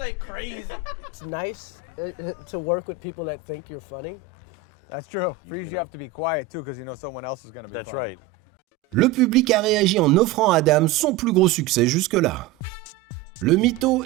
It's nice to work with people that think you're funny. That's true. For you have to be quiet too, because someone else is going to be. That's right. Le public a réagi en offrant à Adam son plus gros succès jusque-là. Le mytho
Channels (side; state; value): left; quieter; 8.9 dB